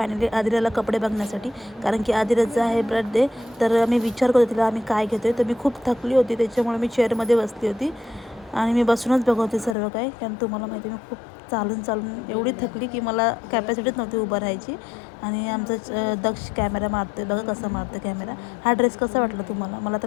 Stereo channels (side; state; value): right; drops out; at 9.8 s